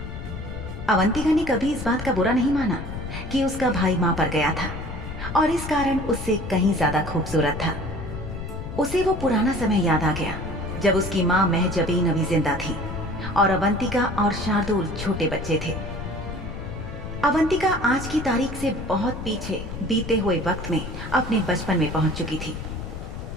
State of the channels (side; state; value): left; noise; rumble, 8 dB below the sound